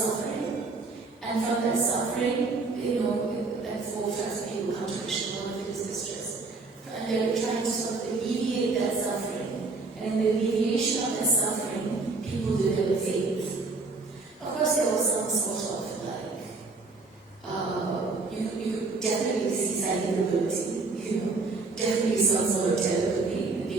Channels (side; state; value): left; quieter; 3.8 dB